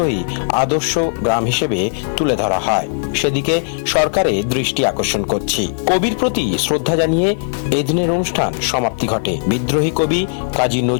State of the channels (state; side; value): silent; right; digital silence